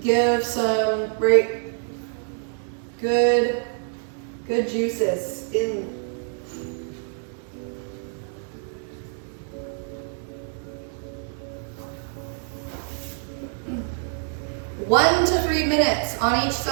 Give some great, good juices in. One to 3 minutes on each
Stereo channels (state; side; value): silent; left; 56 dB below the other